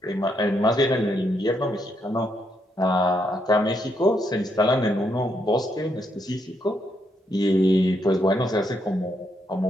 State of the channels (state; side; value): normal; both; correlation 0.77